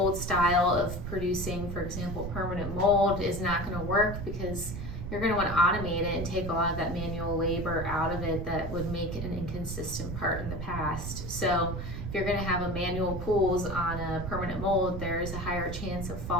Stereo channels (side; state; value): right; noise; rumble, 6 dB below the sound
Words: style of producing, for example, permanent mold is not going to work, because you're going to want to automate it and take a lot of that manual labor out of it that would make an inconsistent part in the past. So if you're going to have a manual pulls on a permanent mold, there's a higher chance of